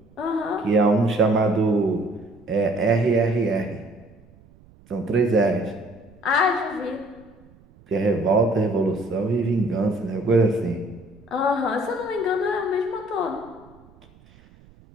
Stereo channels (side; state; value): right; noise; rumble, 27 dB below the sound